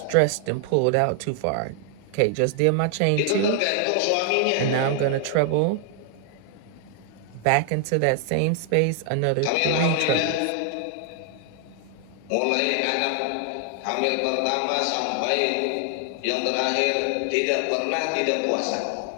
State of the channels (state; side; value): different; both; correlation 0.00